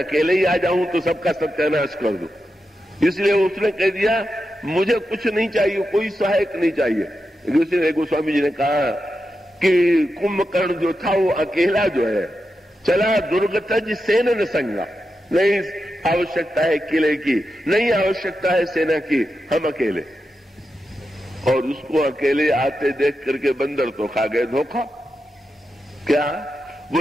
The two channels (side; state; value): both; normal; correlation 0.88